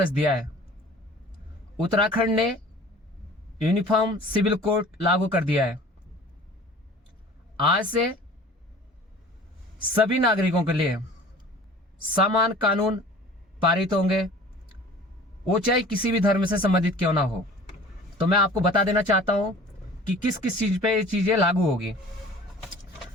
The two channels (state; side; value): normal; both; correlation 0.45